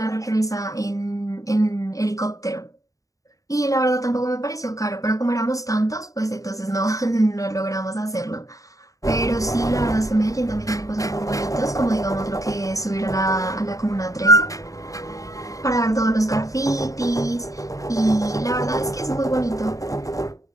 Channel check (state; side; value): late; right; 0.16 ms